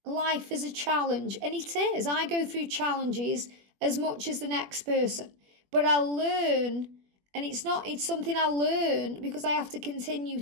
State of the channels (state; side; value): late; left; 21 ms